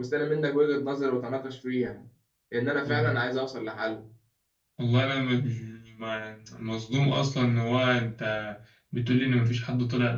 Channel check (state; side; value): identical; both; correlation 1.00